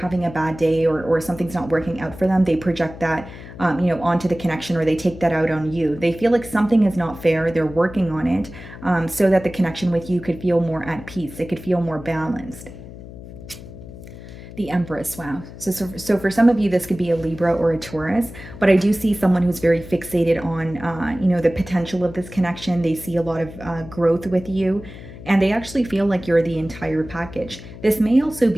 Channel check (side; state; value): left; noise; hum, 15 dB below the sound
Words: a bad day, or something's not working out for them, they project that onto the connection, or they take that out on you. They feel like something is not fair. They're working on it, so that the connection with you could feel more at peace. It could feel more balanced. The Empress, wow. So for some of you, this could be a Libra or a Taurus, but I do see someone who's very fixated on, the potential of this connection. They see a lot of growth with you, and they actually feel like you're the entire package. This may also